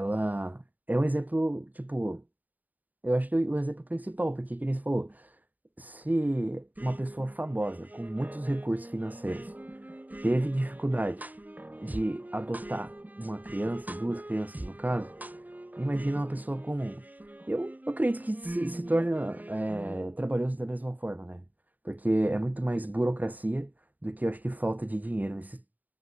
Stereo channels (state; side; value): late; left; 0.081 ms